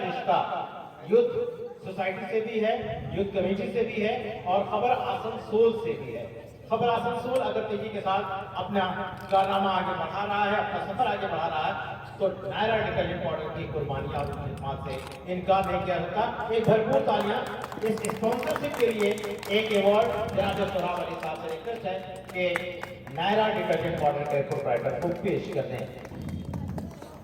युद्ध सोसाइटी से भी है, युद्ध कमेटी से भी है और खबर आसनसोल से भी है। खबर आसनसोल अगर तेजी के साथ अपना कारनामा आगे बढ़ा रहा है, अपना सफर आगे बढ़ा रहा है, तो नायरा डिटर्जेंट पाउडर की कुर्बानियां और खिदमत से इनकार नहीं किया जाता। एक भरपूर तालियां इस स्पॉन्सरशिप के लिए। एक अवार्ड जनाब सोहराब अली साहब से रिक्वेस्ट है कि नायरा डिटर्जेंट पाउडर के प्रोप्राइटर को पेश कर दें।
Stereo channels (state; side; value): identical; both; correlation 1.00